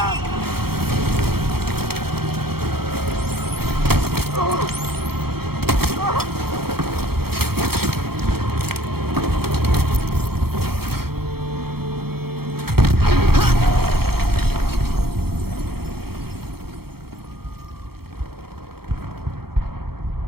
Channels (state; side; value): late; left; 0.95 ms